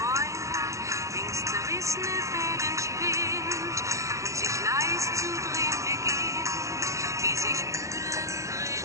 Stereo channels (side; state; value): left; late; 0.15 ms